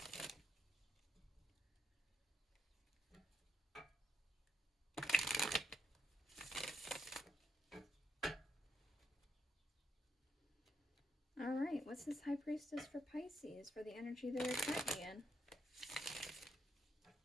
All right, what's this High Priestess for Pisces for the energy they're currently in?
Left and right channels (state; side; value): normal; both; correlation 0.76